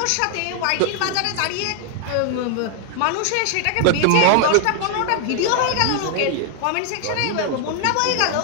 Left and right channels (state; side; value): different; both; correlation 0.00